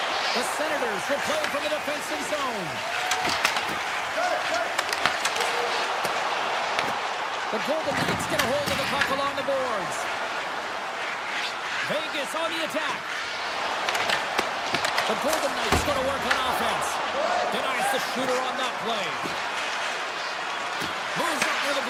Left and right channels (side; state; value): both; identical; correlation 1.00